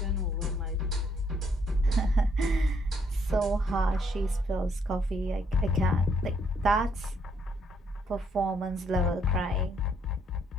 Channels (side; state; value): both; normal; correlation 0.70